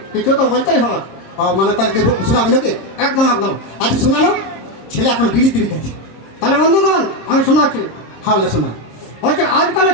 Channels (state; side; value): late; right; 26 ms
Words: কিছু তো বলতেই হবে। মানে তাহলে শোনাবি নাকি? একদম একদম। আচ্ছা শোনানো, ছেলে এখন বিড়ি তিড়ি গেছে। তাহলে বন্ধুগণ আমি শোনাচ্ছি। হ্যাঁ শোনা। বলছে